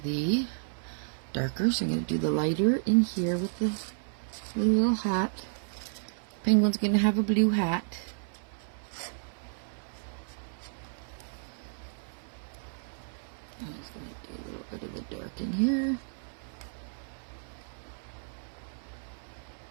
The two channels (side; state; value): left; silent; 56 dB below the other